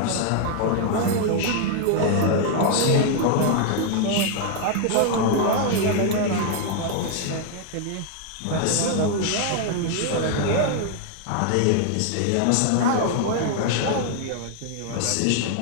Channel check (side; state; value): both; different; correlation 0.00